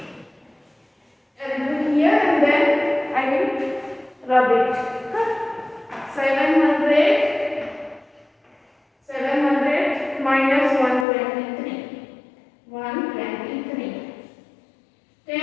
And do here and then I will rub it. 700 minus 123. 123.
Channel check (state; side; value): drops out; right; at 11.1 s